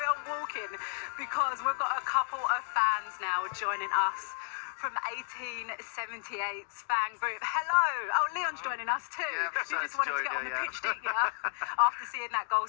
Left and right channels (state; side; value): silent; right; 56 dB below the other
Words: on walking because we've got a couple of fans now joining us from 1878's fan group. Hello. Oh, Leon's joining us too. Yeah, you just wanted to get on the pitch, didn't you? After seeing that goal,